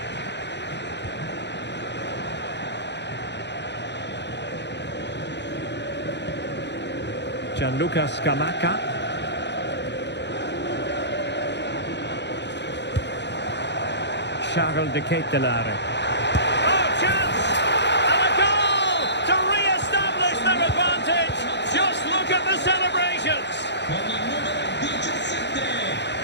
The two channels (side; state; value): right; late; 0.51 ms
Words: Gianluca Scamacca. Charles de Ketelare. Oh, chance! And a goal to re-establish their advantage. Just look at the celebrations. Con il numero 17,